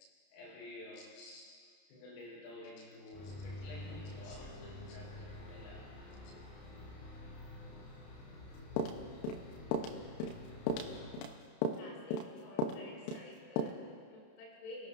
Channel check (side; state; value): right; late; 31 ms